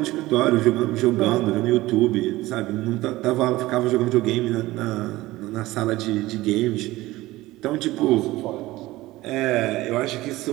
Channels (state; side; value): quieter; left; 18.1 dB